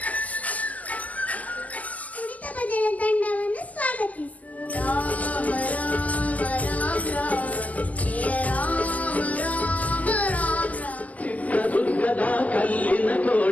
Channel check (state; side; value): late; right; 0.076 ms